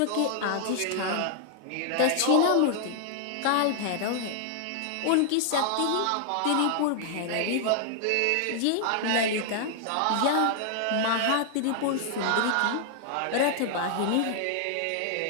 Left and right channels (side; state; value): both; different; correlation 0.00